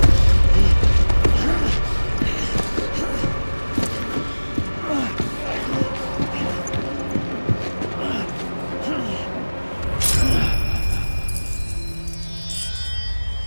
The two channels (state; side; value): inverted; both; correlation -1.00